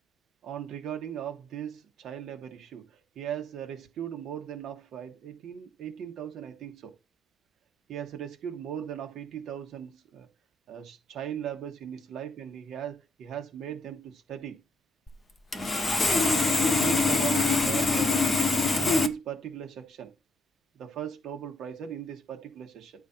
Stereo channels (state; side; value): normal; both; correlation 0.73